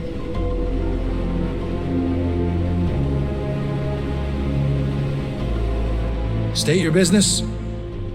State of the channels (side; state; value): both; identical; correlation 1.00